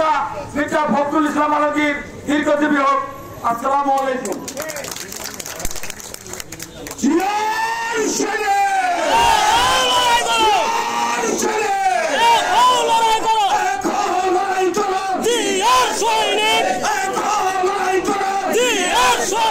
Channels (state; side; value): identical; both; correlation 1.00